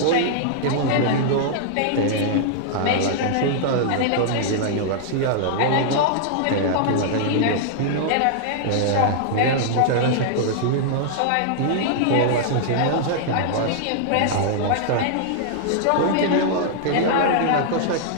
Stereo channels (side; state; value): both; different; correlation -0.01